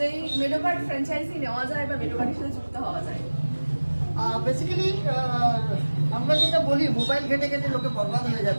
এই মেডোকার্ড ফ্র্যাঞ্চাইজি নেওয়া যায় বা মেডোকার্ডের সাথে যুক্ত হওয়া যায়? বেসিক্যালি আমরা যেটা বলি, মোবাইল ঘেটে ঘেটে লোকে বরবাদ হয়ে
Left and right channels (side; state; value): both; inverted; correlation -1.00